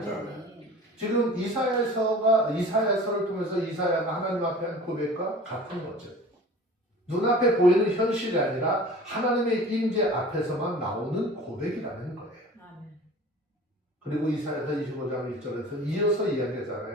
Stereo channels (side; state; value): both; normal; correlation 0.42